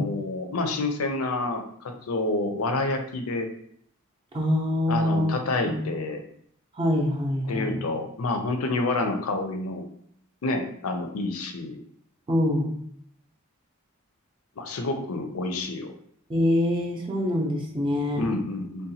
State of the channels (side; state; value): both; normal; correlation 0.48